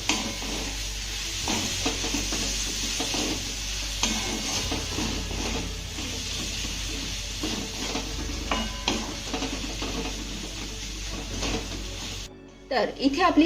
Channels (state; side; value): identical; both; correlation 1.00